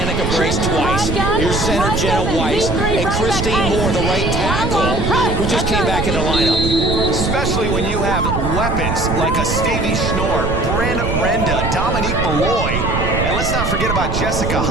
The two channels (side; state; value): right; noise; rumble, 2 dB below the sound